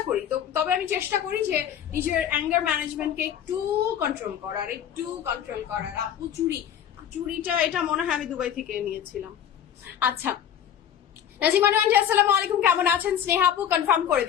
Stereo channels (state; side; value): quieter; right; 9.5 dB